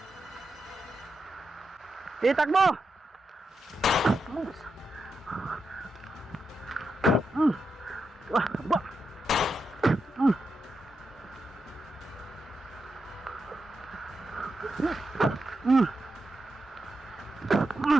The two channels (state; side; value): normal; both; correlation 0.86